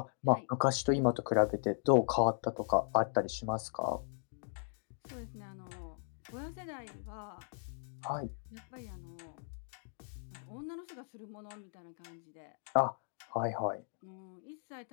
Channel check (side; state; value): right; silent; digital silence